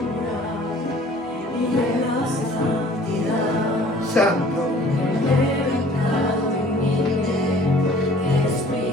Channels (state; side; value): normal; both; correlation 0.52